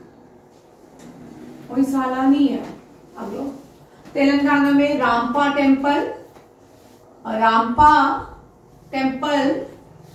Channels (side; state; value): both; identical; correlation 1.00